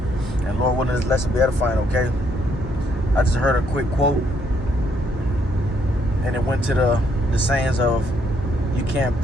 And Lord willing, this lesson be edifying, okay? I just heard a quick quote, and it went to the sayings of, you can't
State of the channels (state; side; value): normal; both; correlation 0.71